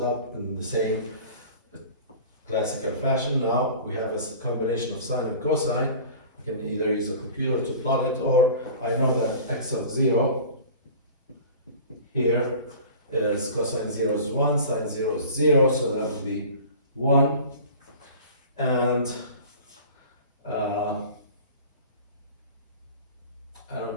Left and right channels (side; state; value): both; inverted; correlation -0.41